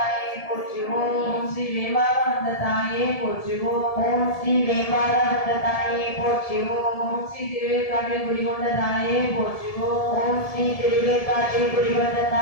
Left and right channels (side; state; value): right; late; 1.7 ms